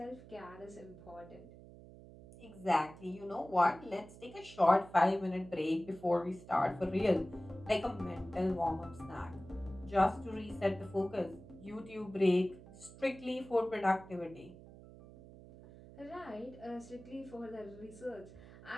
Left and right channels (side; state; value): right; noise; hum, 18 dB below the sound